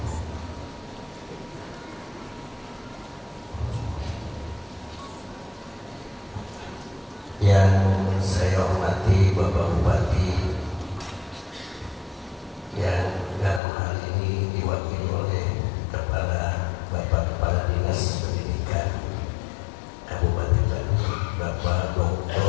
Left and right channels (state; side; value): drops out; right; at 13.6 s